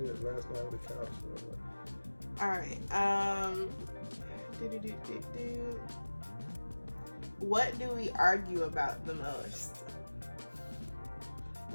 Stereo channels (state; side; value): inverted; both; correlation -1.00